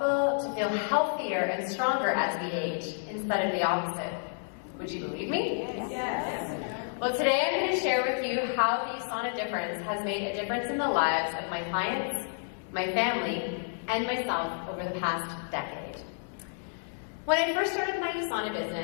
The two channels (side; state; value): right; silent; digital silence